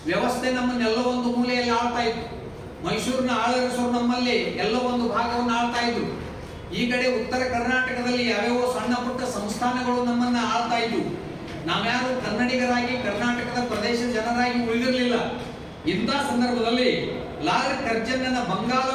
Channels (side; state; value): both; identical; correlation 1.00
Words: ವ್ಯವಸ್ಥೆ ನಮ್ಮನ್ನೆಲ್ಲ ಒಂದು ಮೂಲೆಯಲ್ಲಿ ಆಳ್ತಾ ಇತ್ತು. ಮೈಸೂರಿನ ಆಳರಸರು ನಮ್ಮಲ್ಲಿ ಎಲ್ಲ ಒಂದು ಭಾಗವನ್ನು ಆಳ್ತಾ ಇದ್ರು. ಈ ಕಡೆ ಉತ್ತರ ಕರ್ನಾಟಕದಲ್ಲಿ ಯಾವ್ಯಾವ ಸಣ್ಣ ಪುಟ್ಟ ಸಂಸ್ಥಾನಗಳು ನಮ್ಮನ್ನ ಆಳ್ತಾ ಇದ್ವು. ನಾವ್ಯಾರು ಕನ್ನಡಿಗರಾಗಿ ಕರ್ನಾಟಕದ ಪ್ರದೇಶ ಜನರಾಗಿ ಉಳಿದಿರಲಿಲ್ಲ. ಇಂಥ ಸಂದರ್ಭದಲ್ಲಿ ಲಾಲ್ ಕರ್ಜನ್ನನ ಬಂಗಾಳ